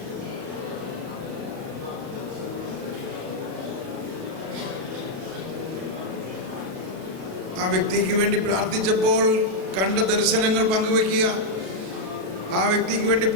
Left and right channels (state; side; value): late; left; 37 ms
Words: ആ വ്യക്തിക്ക് വേണ്ടി പ്രാർത്ഥിച്ചപ്പോൾ കണ്ട ദർശനങ്ങൾ പങ്കുവെക്കുക. ആ വ്യക്തിക്ക് വേണ്ടി